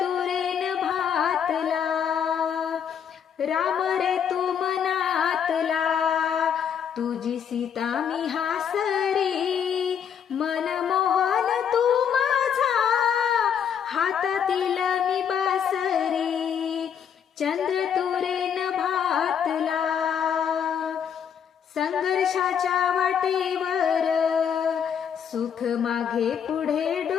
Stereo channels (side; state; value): right; quieter; 8.1 dB